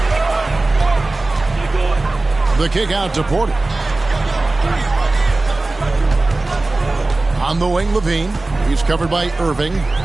The kick out to Porter. On the wing, LaVine. He's covered by Irving.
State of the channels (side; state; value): left; quieter; 3.1 dB